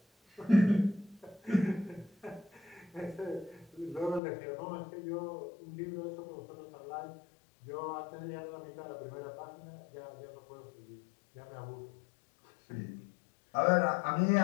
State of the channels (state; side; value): drops out; right; at 4.2 s